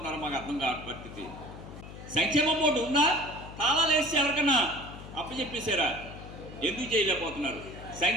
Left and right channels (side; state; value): left; noise; hum, 13 dB below the sound